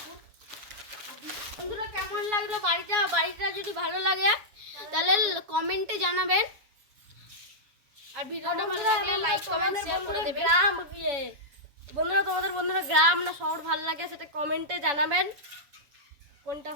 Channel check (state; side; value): late; left; 7.1 ms